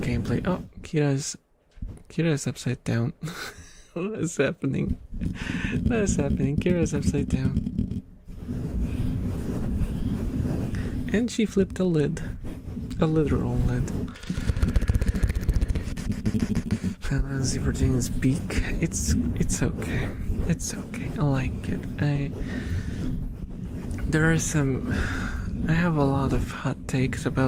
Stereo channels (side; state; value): both; identical; correlation 1.00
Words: Oh, Kira's upside down. What is happening? What is happening? Kira's upside down. And she flipped a lid. A literal lid. Final Fantasy 14's beak. It's okay. It's okay. I like it. There are some I have a lot of hot takes